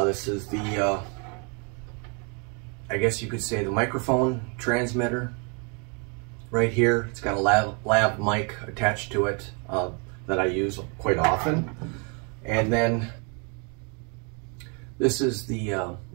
This is the I guess you could say the microphone transmitter right here. It's got a lav mic attached to it that I use quite often. And then this is the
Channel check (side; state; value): left; quieter; 35.3 dB